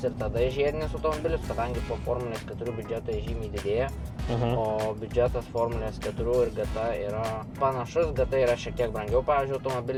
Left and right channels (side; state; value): both; identical; correlation 1.00